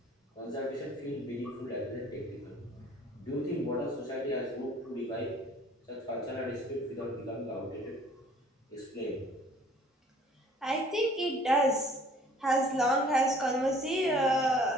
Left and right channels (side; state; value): both; normal; correlation 0.54